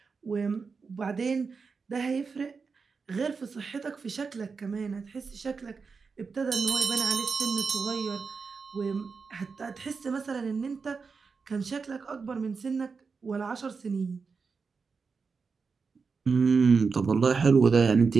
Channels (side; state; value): left; quieter; 5.0 dB